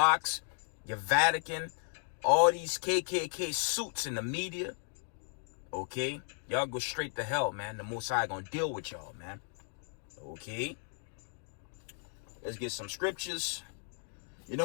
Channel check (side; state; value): right; silent; 54 dB below the other